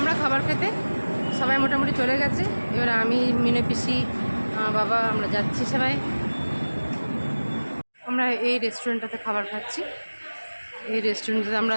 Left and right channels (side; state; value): both; inverted; correlation -1.00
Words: খাবার খেতে। সবাই মোটামুটি চলে গেছে। এবার আমি, মিনু পিসি, বাবা, আমরা যাচ্ছি সবাই। আমরা এই রেস্টুরেন্টটাতে খাবার খাচ্ছি। এই রেস্টুরেন্টে আমরা